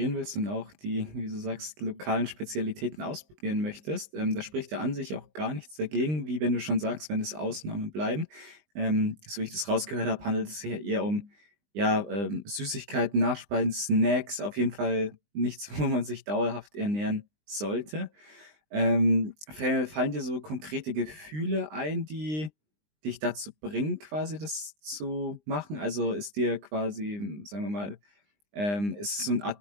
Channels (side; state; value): left; late; 20 ms